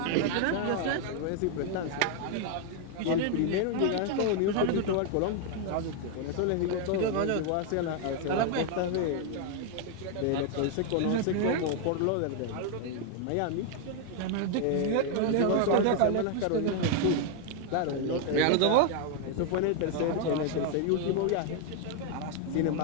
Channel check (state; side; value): different; both; correlation 0.00